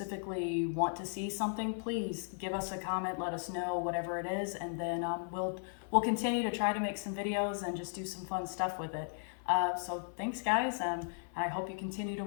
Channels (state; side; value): silent; right; 54 dB below the other